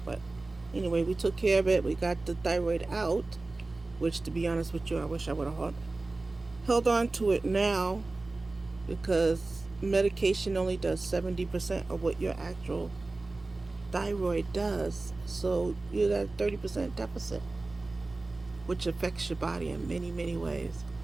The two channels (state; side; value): quieter; left; 3.2 dB